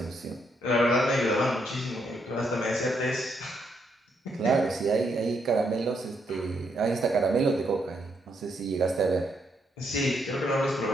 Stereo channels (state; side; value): normal; both; correlation 0.76